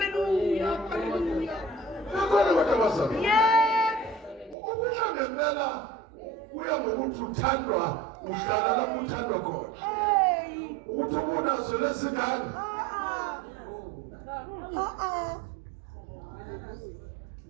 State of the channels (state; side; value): drops out; left; at 4.5 s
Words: Hallelujah. Bakhona abantu abazalwane. Yes. Ukuya ngempela uya ngokuthi uthandwa uhlala lapho uthandwa khona. Hey. Ukuthi ubunazo lesingane.